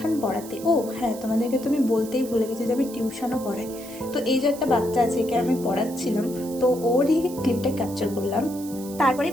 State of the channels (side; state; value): right; noise; hiss, 16 dB below the sound